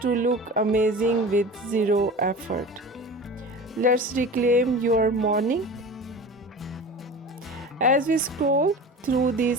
look amazing with zero effort. Let's reclaim your morning. As we scroll through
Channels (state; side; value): normal; both; correlation 0.35